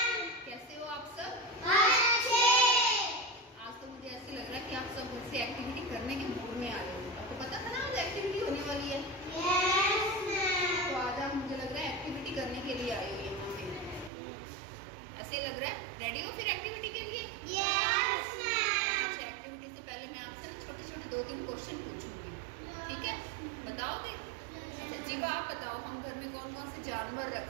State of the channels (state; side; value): drops out; left; at 14.1 s